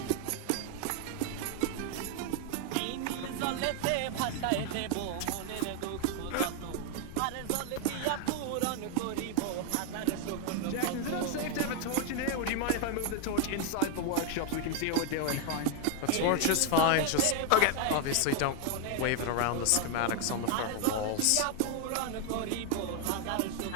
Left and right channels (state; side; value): different; both; correlation 0.00